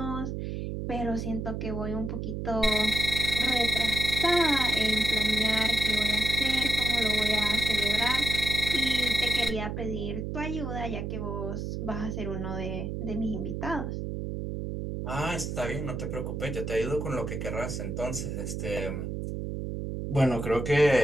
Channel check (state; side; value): noise; right; hum, 4 dB below the sound